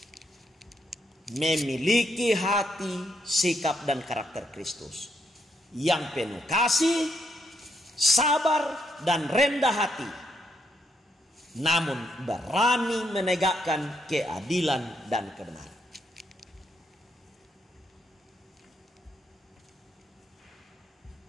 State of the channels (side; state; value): both; normal; correlation 0.77